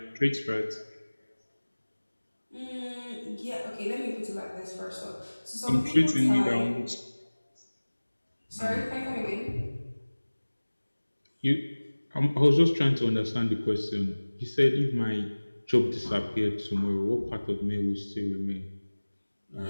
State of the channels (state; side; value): inverted; both; correlation -1.00